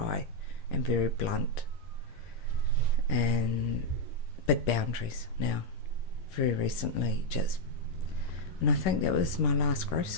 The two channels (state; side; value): late; right; 10 ms